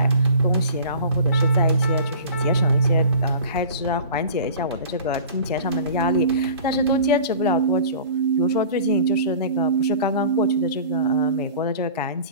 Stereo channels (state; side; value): inverted; both; correlation -0.42